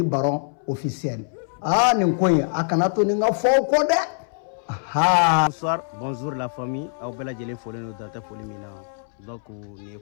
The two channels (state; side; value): silent; right; 62 dB below the other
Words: Baron officiel nin ko in a kana to ni n ka fɔ aw kɔ dɛ. Bonsoir, bonjour la famille aw bɛɛ lajɛlen folen don dantɛ foli min na donc nin ye